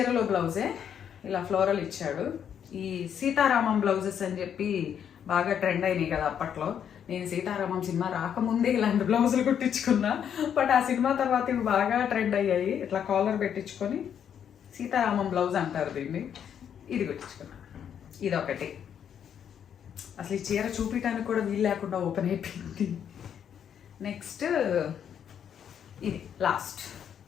బ్లౌజే ఇలా ఫ్లోరల్ ఇచ్చాడు. ఈ సీతారామం బ్లౌజెస్ అని చెప్పి బాగా ట్రెండ్ అయినాయి కదా అప్పట్లో. నేను సీతారామం సినిమా రాకముందే ఇలాంటి బ్లౌజులు కుట్టించుకున్నా, బట్ ఆ సినిమా తర్వాత ఇవి బాగా ట్రెండ్ అయ్యాయి. ఇట్లా కాలర్ పెట్టించుకొని సీతారామం బ్లౌజ్ అంటారు దీన్ని. ఇది కుట్టించుకున్నా. ఇదొకటి. అసలు ఈ చీర చూపించడానికి కూడా వీలు లేకుండా ఓపెన్ అయిపోయింది. నెక్స్ట్ ఇది లాస్ట్.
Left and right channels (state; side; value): quieter; right; 8.6 dB